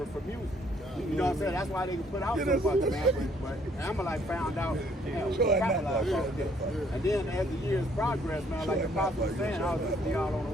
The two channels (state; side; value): normal; both; correlation 0.64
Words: for music. You know what I'm saying? That's why they can put out so much, man. But Amalek found out, damn, we capitalized on this. And then as the years progressed, man, like the Apostle was saying, I was listening y'all on the